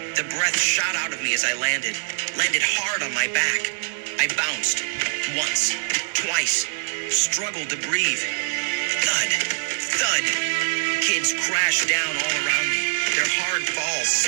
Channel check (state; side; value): silent; left; 63 dB below the other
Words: The breath shot out of me as I landed hard on my back. I bounced. Once. Twice. Struggled to breathe. Thud. Thud. Kids crashed down all around me. Their hard falls